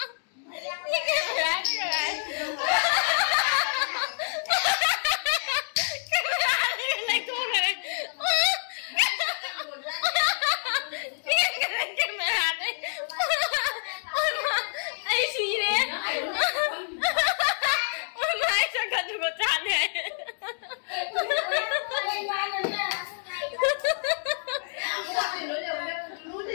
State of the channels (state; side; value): silent; right; digital silence